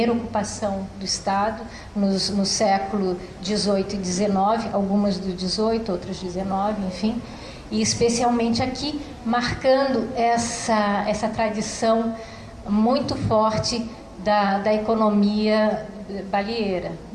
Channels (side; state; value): both; identical; correlation 1.00